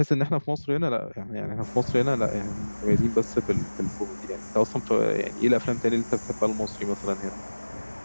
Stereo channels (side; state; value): both; inverted; correlation -1.00